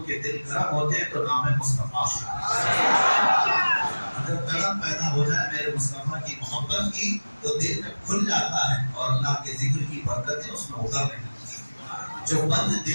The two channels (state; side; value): inverted; both; correlation -1.00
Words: کے دل گرم ہوتے ہیں تو نام مصطفیٰ اگر گرم پیدا ہو جائے میرے مصطفیٰ کی محبت کی تو دل میں کھل جاتا ہے اور اللہ کے ذکر کی برکتیں اس میں اترنے لگتی ہیں۔ جو بند